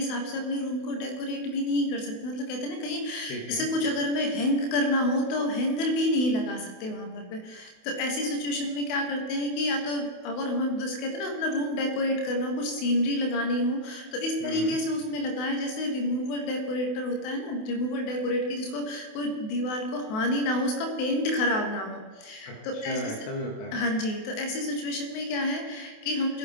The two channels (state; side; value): late; right; 28 ms